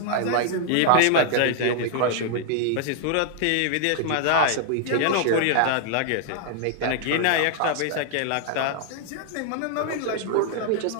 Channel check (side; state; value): both; different; correlation -0.01